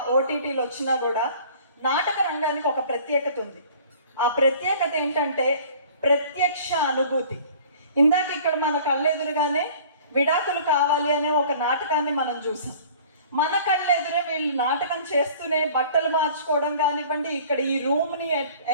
ఓటీటీలు వచ్చినా కూడా నాటక రంగానికి ఒక ప్రత్యేకత ఉంది. ఆ ప్రత్యేకత ఏంటంటే ప్రత్యక్ష అనుభూతి. ఇందాక ఇక్కడ మన కళ్ళెదురుగానే విడాకులు కావాలి అనే ఒక నాటకాన్ని మనం చూసాం. మన కళ్ళెదురే వీళ్ళు నాటకం చేస్తూనే బట్టలు మార్చుకోవడం కానివ్వండి, ఇక్కడ ఈ రూమ్ని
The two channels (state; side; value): inverted; both; correlation -0.49